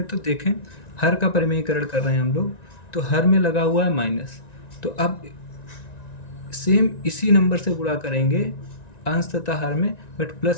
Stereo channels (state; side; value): late; right; 1.9 ms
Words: तो देखें, हर का परिमेयीकरण कर रहे हैं हम लोग, तो हर में लगा हुआ है माइनस। तो अब सेम इसी नंबर से गुणा करेंगे अंश तथा हर में, बट